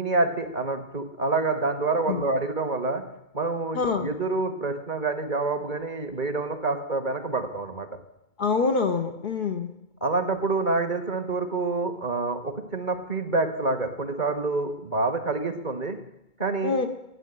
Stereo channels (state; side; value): late; right; 2.2 ms